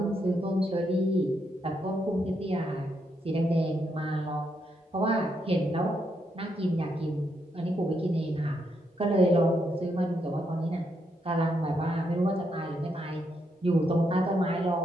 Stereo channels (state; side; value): normal; both; correlation 0.79